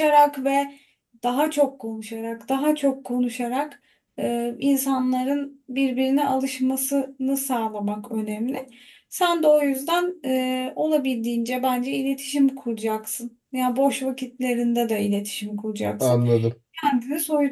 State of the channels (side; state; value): both; identical; correlation 1.00